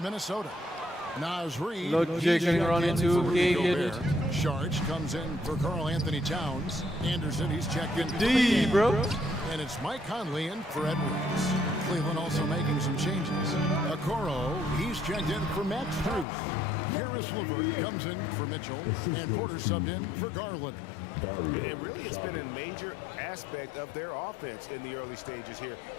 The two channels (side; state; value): right; drops out; at 16.2 s